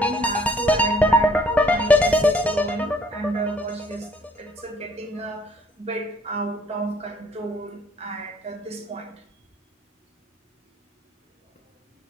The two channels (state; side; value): normal; both; correlation 0.60